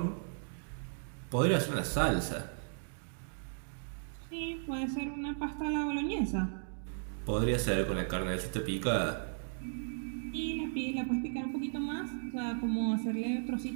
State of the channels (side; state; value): left; silent; digital silence